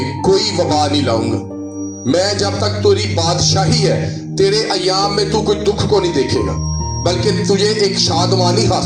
کوئی وبا نہیں لاؤں گا. میں جب تک تیری بادشاہی ہے تیرے ایام میں تو کوئی دکھ کو نہیں دیکھے گا, بلکہ تجھے ایک شادمانی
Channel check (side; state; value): both; identical; correlation 1.00